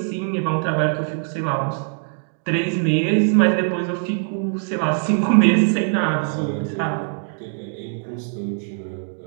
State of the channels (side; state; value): left; silent; digital silence